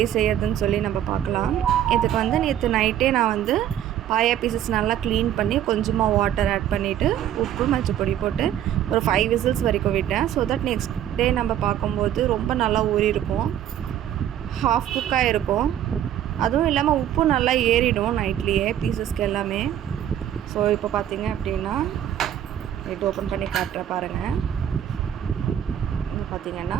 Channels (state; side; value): quieter; left; 10.9 dB